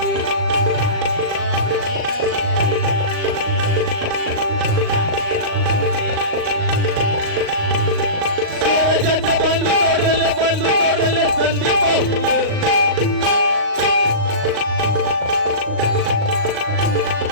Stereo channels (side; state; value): left; late; 38 ms